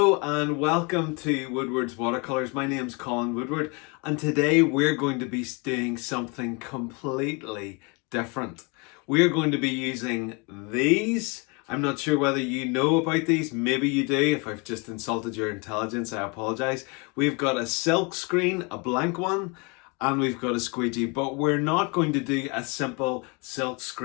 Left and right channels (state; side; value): quieter; right; 30.8 dB